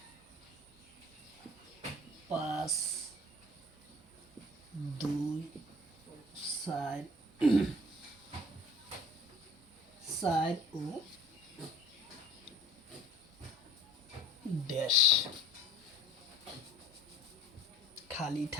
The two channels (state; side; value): normal; both; correlation 0.46